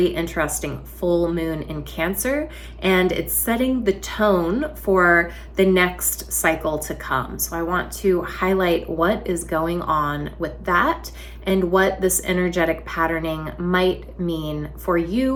interesting full moon in Cancer, and it's setting the tone for the next cycle to come. So I want to highlight what is going on with that and what this energetic patterning might mean for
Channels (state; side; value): identical; both; correlation 1.00